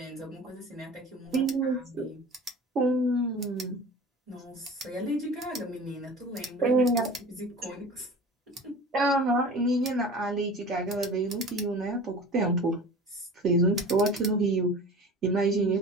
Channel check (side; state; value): both; normal; correlation 0.38